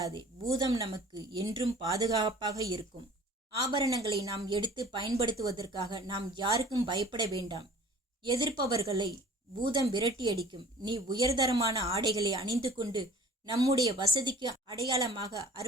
பூதம் நமக்கு என்றும் பாதுகாப்பாக இருக்கும். ஆபரணங்களை நாம் எடுத்து பயன்படுத்துவதற்காக நாம் யாருக்கும் பயப்பட வேண்டாம். எதிர்ப்பவர்களை பூதம் விரட்டியடிக்கும். நீ உயர்தரமான ஆடைகளை அணிந்து கொண்டு நம்முடைய வசதிக்கு அடையாளமாக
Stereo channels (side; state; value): both; normal; correlation 0.47